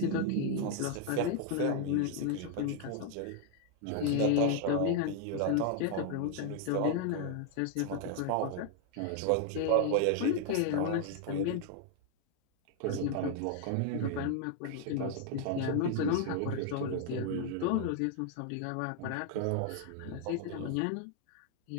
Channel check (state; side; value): different; both; correlation 0.00